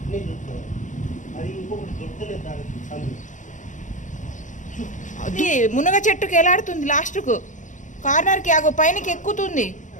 అది మునగ చెట్టుకి ఎలాడుతుంది లాస్ట్కు కార్నర్కి అగో పైనకి ఎక్కుతుంది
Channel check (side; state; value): right; late; 0.36 ms